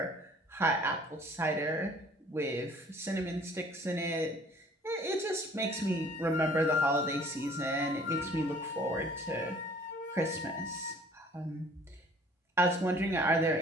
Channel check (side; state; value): both; normal; correlation 0.54